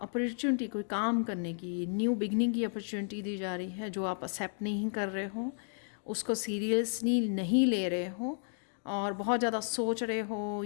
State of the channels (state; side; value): silent; right; digital silence